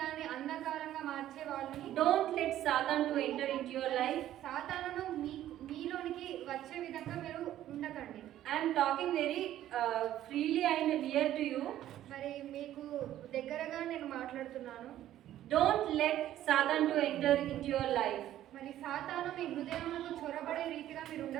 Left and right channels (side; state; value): left; quieter; 12.7 dB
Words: అంధకారంగా మార్చే వాళ్ళని Don't let Satan to enter into your life. సాతానును మీలోనికి వచ్చే విధంగా మీరు ఉండకండి. I am talking very freely and near to you. మరి మీకు దగ్గరగా నేను మాట్లాడుతున్నాను. Don't let Satan to enter into your life. మరి సాతాను మీ హృదయంలో చొరబడే రీతిగా మీరు